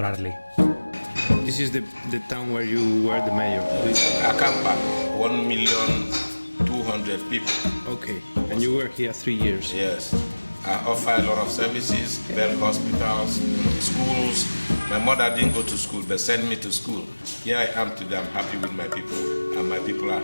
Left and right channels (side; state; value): both; inverted; correlation -1.00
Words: This is the town where you were the mayor. This Akampa, 1,200,000 people. Okay, and you were here 3 years. Yes. I offer a lot of services, build hospitals, schools. My mother didn't go to school, but sent me to school. Here I am today, I'm happy with my people, and my people are